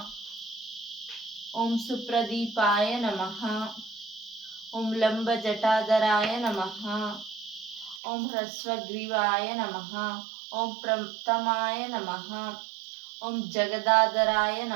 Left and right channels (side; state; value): left; drops out; at 8.0 s